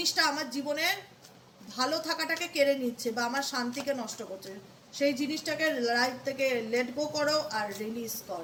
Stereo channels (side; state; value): both; identical; correlation 1.00